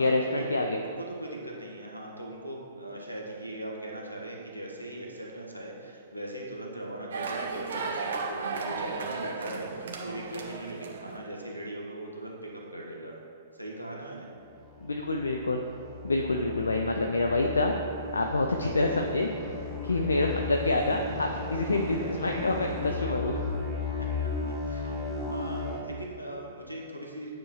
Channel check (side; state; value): both; inverted; correlation -0.61